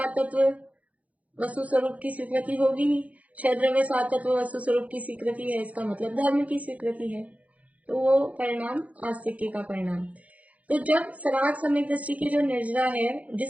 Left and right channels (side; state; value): left; late; 0.068 ms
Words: तत्व वस्तु स्वरूप की स्वीकृति होगी। 6 द्रव्य 7 तत्व वस्तु स्वरूप की स्वीकृति है, इसका मतलब धर्म की स्वीकृति है, तो वो परिणाम आस्तिक्य का परिणाम। तो जब सराग सम्यक दृष्टि की जो निर्जरा है,